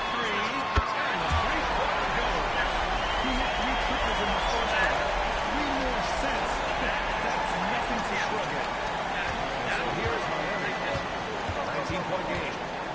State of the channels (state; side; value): identical; both; correlation 1.00